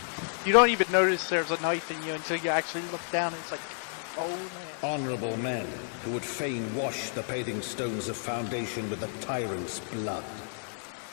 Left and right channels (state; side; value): silent; right; digital silence